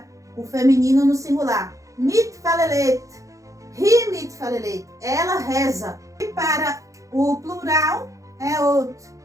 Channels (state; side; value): late; left; 0.16 ms